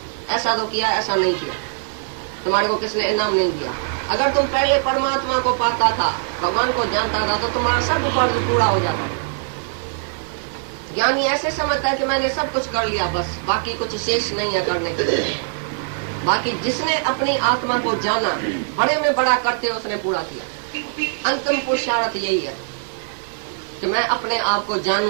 ऐसा तो किया ऐसा नहीं किया, तुम्हारे को किसने इनाम नहीं दिया। अगर तुम पहले परमात्मा को पाता था, भगवान को जानता था, तो तुम्हारा सब फर्ज पूरा हो जाता। ज्ञानी ऐसे समझता है कि मैंने सब कुछ कर लिया, बस बाकी कुछ शेष नहीं है करने के लिए। बाकी जिसने अपनी आत्मा को जाना, बड़े में बड़ा करते उसने पूरा किया। अंतिम पुरुषार्थ यही है कि मैं अपने आप को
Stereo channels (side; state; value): left; silent; digital silence